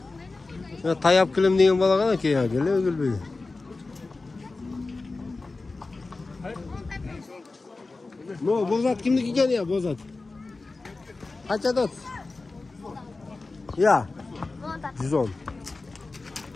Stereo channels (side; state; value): right; quieter; 3.6 dB